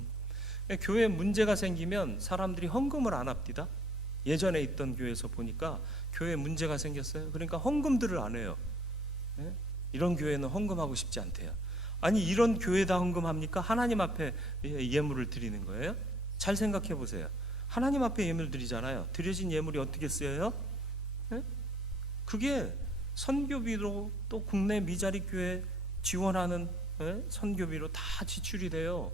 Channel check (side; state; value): both; normal; correlation 0.59